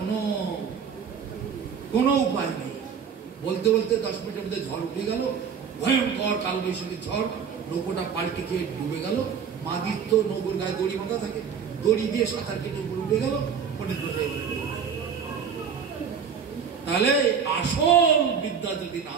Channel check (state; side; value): quieter; left; 6.8 dB